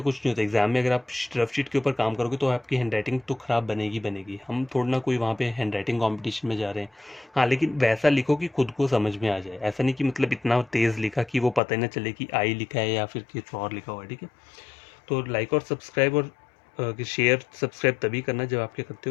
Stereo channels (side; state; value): right; drops out; at 11.6 s